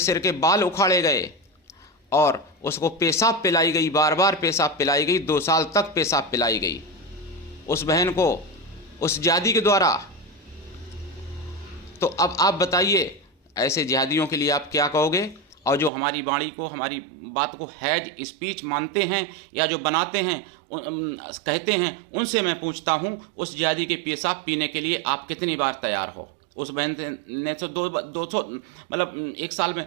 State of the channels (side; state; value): left; drops out; at 15.9 s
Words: के बाल उखाड़े गए और उसको पेशाब पिलाई गई, बार बार पेशाब पिलाई गई, 2 साल तक पेशाब पिलाई गई उस बहन को उस जिहादी के द्वारा। तो अब आप बताइए ऐसे जिहादियों के लिए आप क्या कहोगे? और जो हमारी वाणी को, हमारी बात को हैज स्पीच मानते हैं या जो बनाते हैं कहते हैं, उनसे मैं पूछता हूं उस जिहादी के पेशाब पीने के लिए आप कितनी बार तैयार हो? उस बहन ने तो 200 मतलब एक